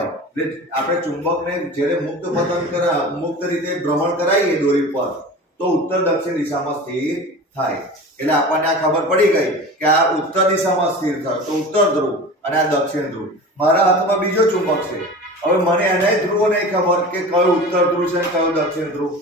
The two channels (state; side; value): normal; both; correlation 0.34